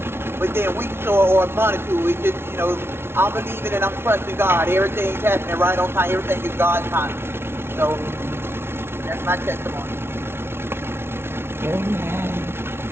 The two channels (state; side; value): late; left; 0.12 ms